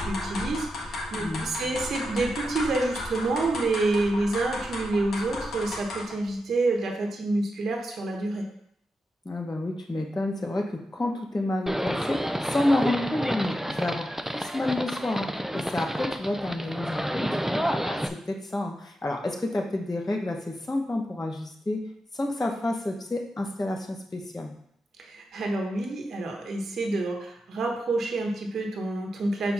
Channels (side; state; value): both; normal; correlation 0.88